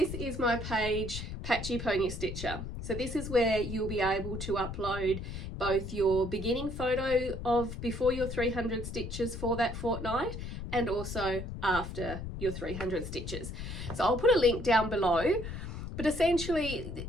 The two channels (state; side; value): noise; left; rumble, 7 dB below the sound